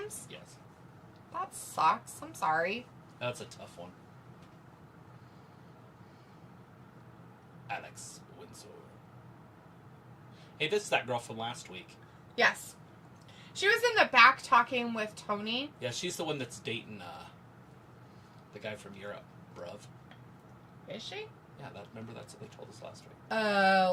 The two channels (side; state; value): both; identical; correlation 1.00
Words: Yes. That sucks. I'm sorry. That's a tough one. Alex Winslow. Hey, this is that girl from last week. Yes. She was in the back talking with Tony. Yeah, she's the one that's dating the guy from Europe, bruv. Is she? Yeah, remember that's what they told us last week.